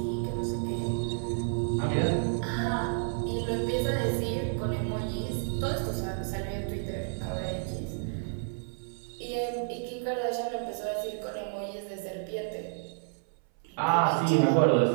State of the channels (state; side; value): silent; left; 58 dB below the other